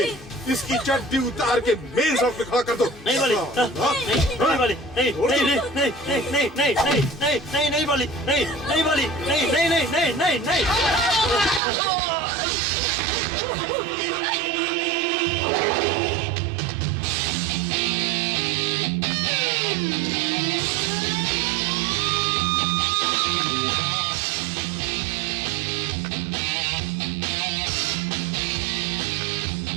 इसकी चड्डी उतार के मेन शॉप पे खड़ा कर दो। नहीं बाली, नहीं बाली, नहीं नहीं नहीं नहीं नहीं नहीं नहीं नहीं नहीं नहीं बाली, नहीं नहीं बाली, नहीं नहीं नहीं नहीं नहीं नहीं।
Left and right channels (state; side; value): drops out; left; at 11.6 s